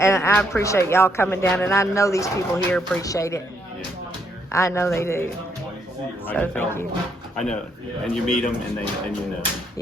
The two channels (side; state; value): both; normal; correlation 0.73